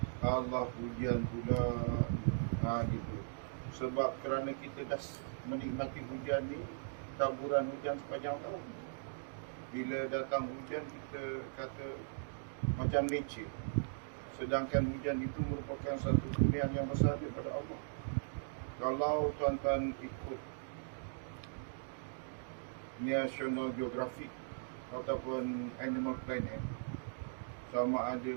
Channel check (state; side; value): silent; left; digital silence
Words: Allah hujan pula, gitu. Sebab kerana kita dah menikmati hujan ni, taburan hujan sepanjang tahun. Bila datang hujan, kita kata macam nature. Sedangkan hujan itu merupakan satu kurniaan yang besar daripada Allah. Kalau tuan-tuan ikut National Geographic ataupun Animal Planet, sama ada